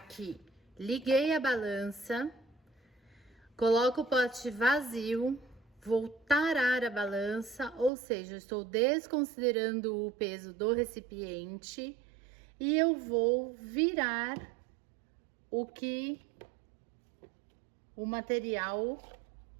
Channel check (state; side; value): drops out; left; at 7.9 s